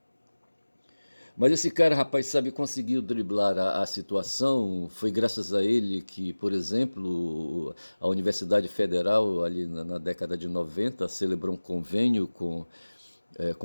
Mas esse cara, rapaz, sabe, conseguiu driblar a situação. Foi graças a ele que, por exemplo, a Universidade Federal, ali na década de 90, celebrou um convênio com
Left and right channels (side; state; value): both; inverted; correlation -1.00